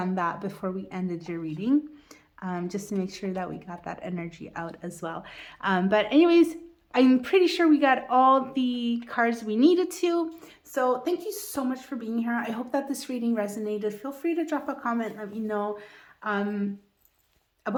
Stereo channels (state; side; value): identical; both; correlation 1.00